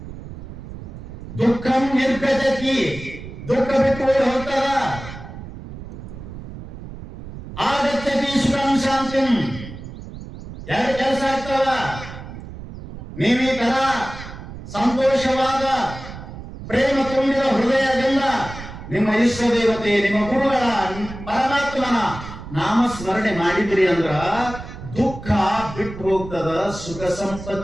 ದುಃಖಂ ನಿರ್ಗತಿ, ದುಃಖ ಬಿಟ್ಟು ಹೋಗ್ತದ. ಆಗಚ್ಚತಿ ಸುಖಂ ಶಾಂತಿಂ. ಎರಡು ಕೆಲಸ ಆಗ್ತದ. ನೀವು ಈ ತರ ಸಂತೋಷವಾದ ಪ್ರೇಮ ತುಂಬಿದ ಹೃದಯದಿಂದ ನಿಮ್ಮ ಇಷ್ಟ ದೇವತೆ, ನಿಮ್ಮ ಗುರುಗಳ, ಪರಮಾತ್ಮನ ನಾಮಸ್ಮರಣೆ ಮಾಡಿದ್ರಿ ಅಂದ್ರ ದುಃಖ ಬಿಟ್ಟು ಹೋಗ್ತದ, ಸುಖ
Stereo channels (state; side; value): noise; right; rumble, 12 dB below the sound